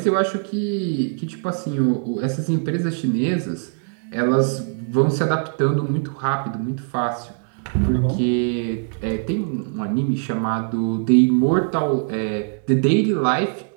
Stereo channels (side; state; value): left; silent; 64 dB below the other